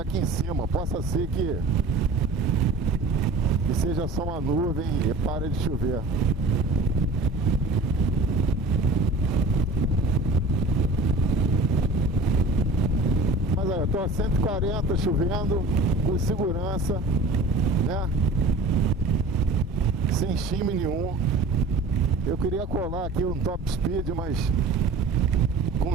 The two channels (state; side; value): quieter; left; 3.1 dB